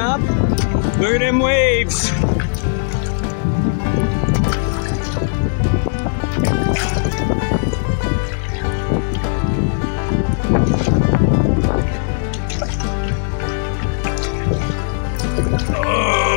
Look at them waves.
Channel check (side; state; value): right; silent; 65 dB below the other